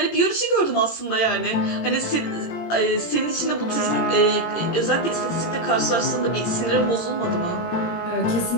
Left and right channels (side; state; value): right; late; 18 ms